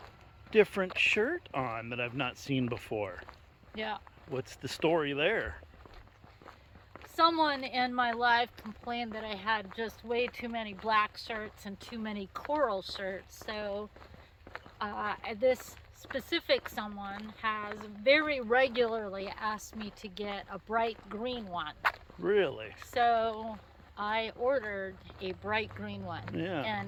different shirt on that I've not seen before. Yeah. What's the story there? Someone in my life complained that I had just way too many black shirts and too many coral shirts. So this specific someone has very regularly asked me to get a bright green one. Really? So I ordered a bright green one. Yeah.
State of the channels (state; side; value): identical; both; correlation 1.00